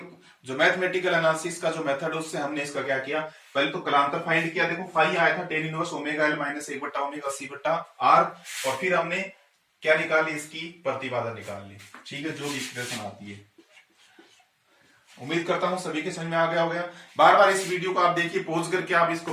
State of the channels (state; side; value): identical; both; correlation 1.00